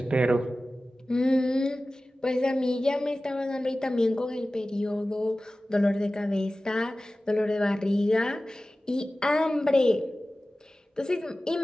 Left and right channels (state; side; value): normal; both; correlation 0.96